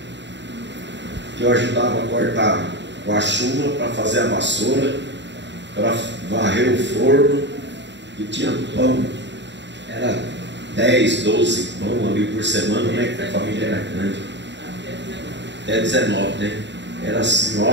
que eu ajudava a cortar com a chuma para fazer a vassoura, para varrer o forno, e tinha pão, era 10, 12 pão ali por semana, né? Que a família era grande, até 19, né? Era a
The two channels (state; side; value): late; left; 0.52 ms